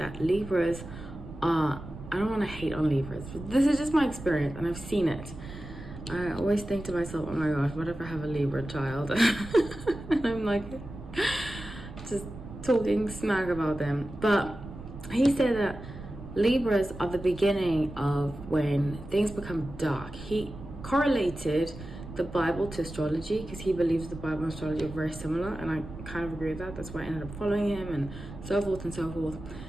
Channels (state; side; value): noise; right; rumble, 13 dB below the sound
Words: Libras are, I don't want to hate on Libras, but this is just my experience, and I've seen it. I always think to myself, oh my gosh, what if I have a Libra child? And I'm like, just talking smack about them. But he said that Libras are the beginning of when things become dark. He correlated the Bible to astrology, because he believes the Bible and astrology are very similar, and I kind of agree with that. That's why I ended up following him, and so forth and so forth.